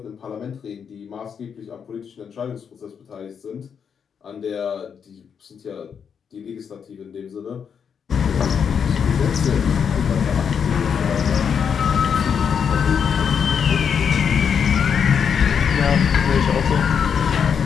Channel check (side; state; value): right; quieter; 7.1 dB